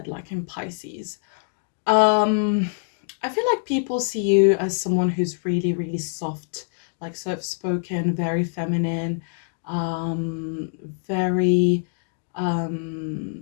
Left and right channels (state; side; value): silent; right; digital silence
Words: like in Pisces. I feel like people see you as someone who's really, really soft, like soft-spoken, very feminine, very